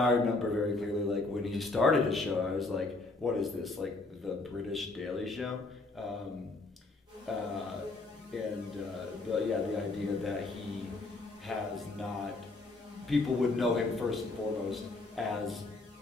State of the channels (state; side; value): quieter; right; 3.3 dB